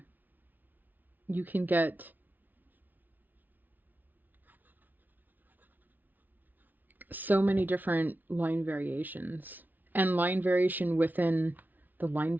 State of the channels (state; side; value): late; left; 0.083 ms